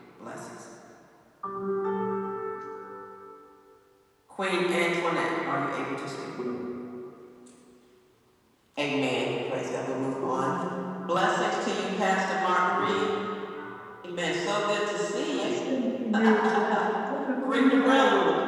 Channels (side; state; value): both; identical; correlation 1.00